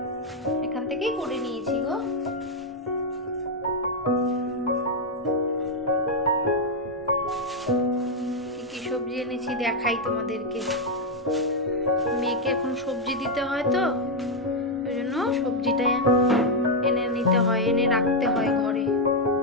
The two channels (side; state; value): both; normal; correlation 0.00